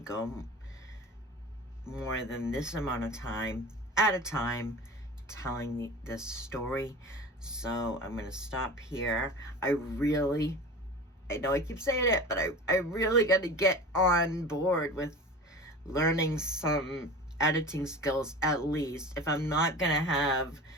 go more than this amount of time at a time telling this story. So I'm gonna stop here. I know I keep saying it, but I really got to get on board with learning some editing skills, at least, if I'm not gonna have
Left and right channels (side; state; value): both; normal; correlation 0.35